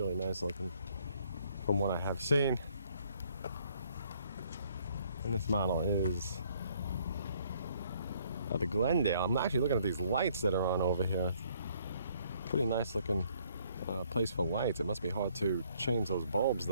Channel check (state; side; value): inverted; both; correlation -0.64